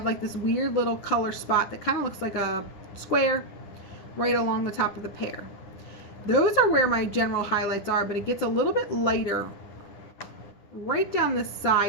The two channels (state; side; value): late; right; 9.9 ms